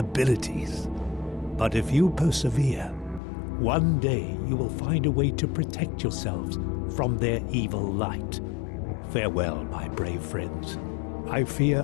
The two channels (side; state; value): right; drops out; at 3.2 s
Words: But if you persevere, one day you will find a way to protect yourselves from their evil light. Farewell, my brave friends. I